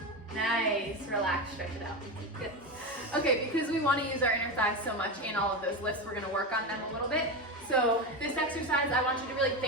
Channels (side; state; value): both; normal; correlation 0.18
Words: Nice, relax, stretch it out. Good. Okay, because we want to use our inner thighs so much in all of those lifts, we're going to work on them a little bit. So this exercise, I want you to really